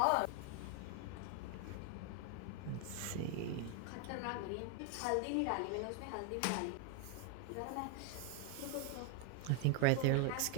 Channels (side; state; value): both; different; correlation 0.01